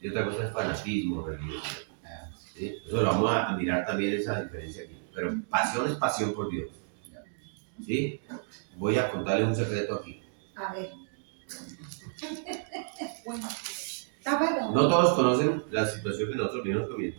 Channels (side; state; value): left; silent; digital silence